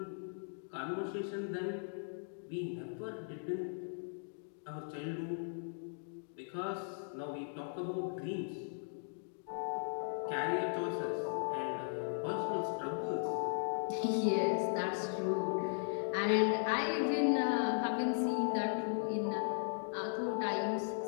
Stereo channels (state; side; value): silent; right; digital silence